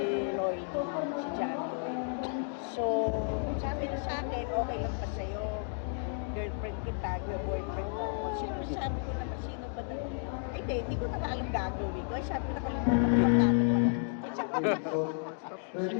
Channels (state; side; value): silent; right; 56 dB below the other